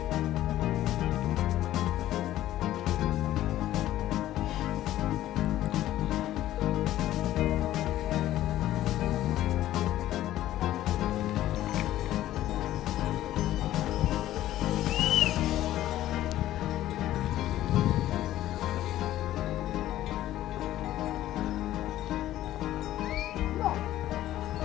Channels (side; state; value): right; quieter; 13.8 dB